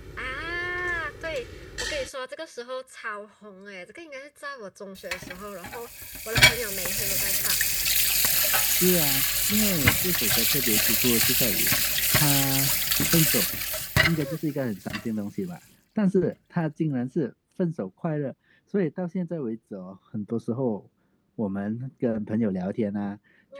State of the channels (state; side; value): identical; both; correlation 1.00